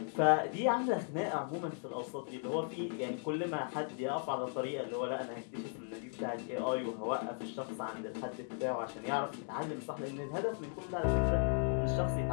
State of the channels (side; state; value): right; silent; 53 dB below the other